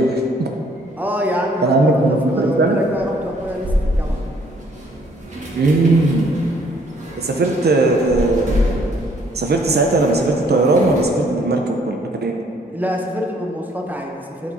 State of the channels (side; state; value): both; normal; correlation 0.63